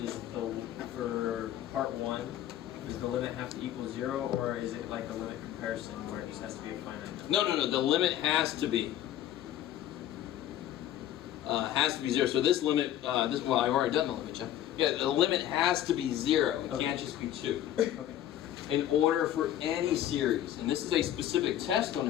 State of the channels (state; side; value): quieter; right; 11.9 dB